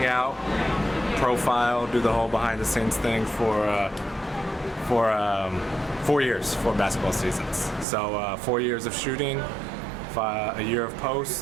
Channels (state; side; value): drops out; left; at 7.9 s